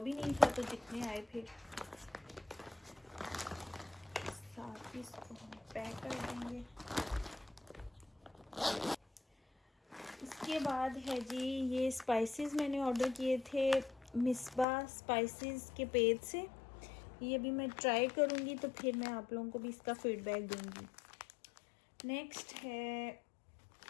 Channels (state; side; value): drops out; right; at 14.7 s